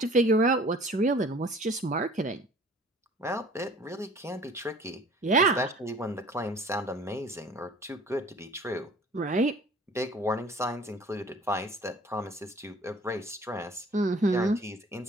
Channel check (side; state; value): both; normal; correlation 0.49